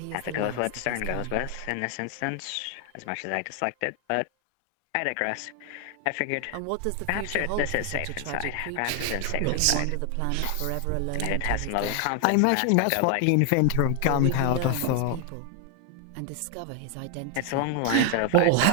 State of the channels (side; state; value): both; different; correlation 0.00